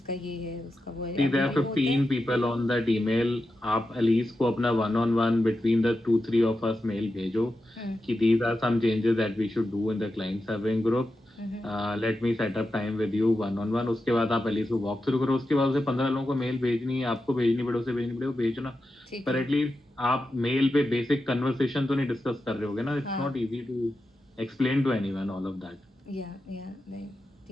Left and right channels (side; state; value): both; normal; correlation 0.89